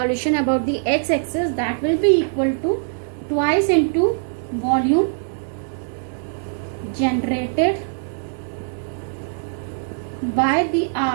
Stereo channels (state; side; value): silent; left; digital silence